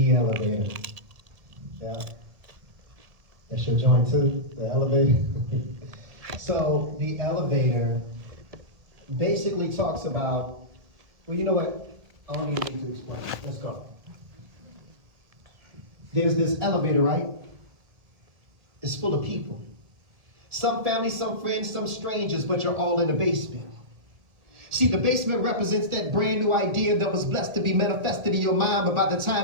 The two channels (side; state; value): left; late; 1.7 ms